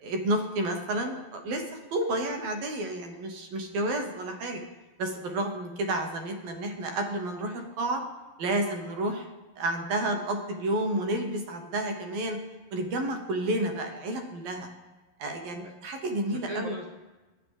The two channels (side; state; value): left; late; 11 ms